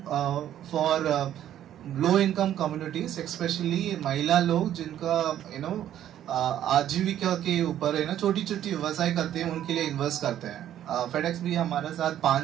for low income communities, specially महिला लोग जिनका आजीविका के ऊपर है ना, छोटी छोटी व्यवसाय करते हैं, उनके लिए इन्वेस्ट करते हैं। फेडेक्स भी हमारे साथ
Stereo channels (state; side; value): quieter; left; 11.3 dB